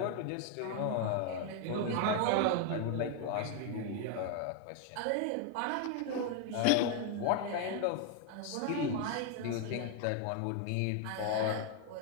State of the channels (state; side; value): different; both; correlation 0.00